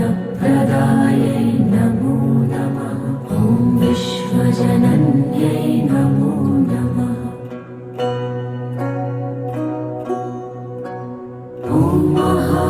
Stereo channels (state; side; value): identical; both; correlation 1.00